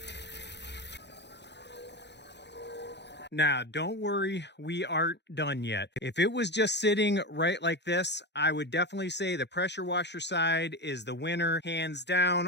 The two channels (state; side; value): late; right; 0.50 ms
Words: Now, don't worry, we aren't done yet. If it was just sitting right like this, I would definitely say the pressure washer side is the winner. Hands down,